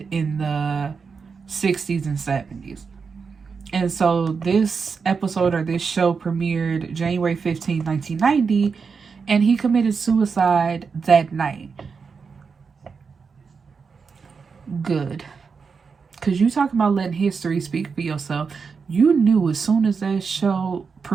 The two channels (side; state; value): left; quieter; 5.4 dB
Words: in the 60s and 70s? And so this episode, or this show, premiered January 15, 1990, and he committed suicide that night. Good. Because you talking about letting history speak for yourself. You knew as soon as that show